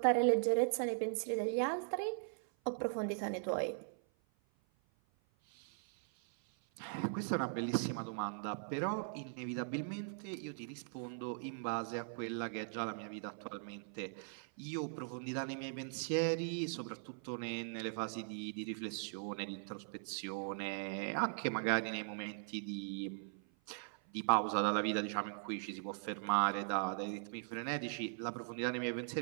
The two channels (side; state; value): left; silent; 51 dB below the other